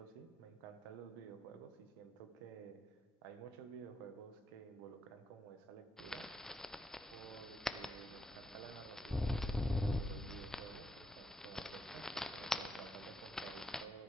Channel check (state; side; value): normal; both; correlation 0.79